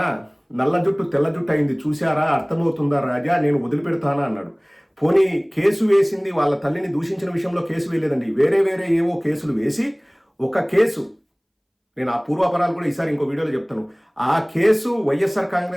నల్ల జుట్టు తెల్ల జుట్టు అయింది చూశారా, అర్థమవుతుందా రాజా, నేను వదిలిపెడతానా అన్నాడు. పోనీ కేసు వేసింది వాళ్ళ తల్లిని దూషించిన విషయంలో కేసు వేయలేదండి, వేరే ఏవో కేసులు వేసి ఒక కేసు, నేను ఆ పూర్వాపరాలు కూడా ఈసారి ఇంకో వీడియోలో చెప్తాను. ఆ కేసు వైఎస్ఆర్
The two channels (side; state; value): both; identical; correlation 1.00